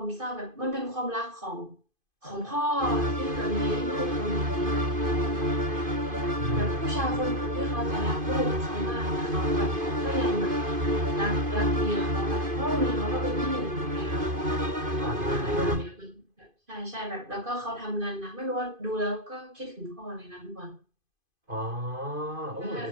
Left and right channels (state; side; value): late; left; 2.5 ms